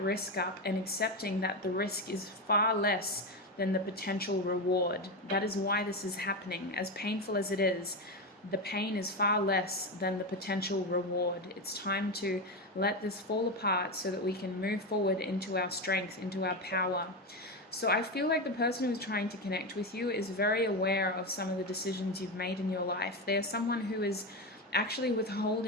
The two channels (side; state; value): both; normal; correlation 0.15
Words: risk up and accepting that the risk is far less than the potential reward. That is why this is happening. As painful as it is, the pain is far less than the potential reward. It's time to let this fall apart so that we can move forward into our strength, into our power. So I feel like the person who's trying to connect with you is very aware of some of the decisions you've made in your life. They're someone who is actually